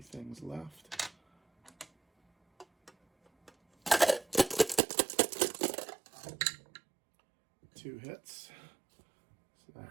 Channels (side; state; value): left; drops out; at 4.8 s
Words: things left. Two hits. So